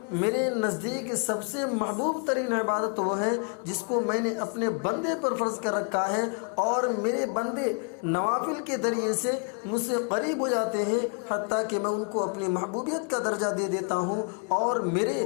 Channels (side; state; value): right; quieter; 37.5 dB